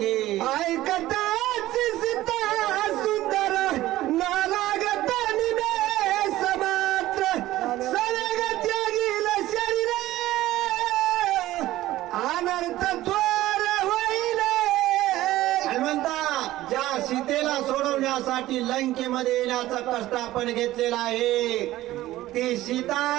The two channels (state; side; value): quieter; left; 15.7 dB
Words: ऐकताची सीता सुंदर नालागत समात्र सलग त्यागील शरीर अनर्थ थोर होईल. हनुमंता ज्या सीतेला सोडवण्यासाठी लंकेमध्ये येण्याचा कष्ट आपण घेतलेला आहे, ती सीता